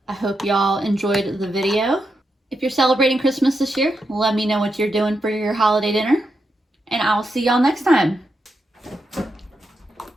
I hope y'all enjoyed the video. If you're celebrating Christmas this year, let me know what you're doing for your holiday dinner, and I'll see y'all next time.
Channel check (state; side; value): normal; both; correlation 0.85